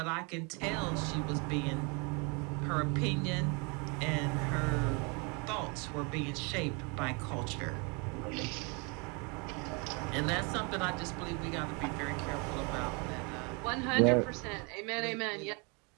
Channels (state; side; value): quieter; left; 31.7 dB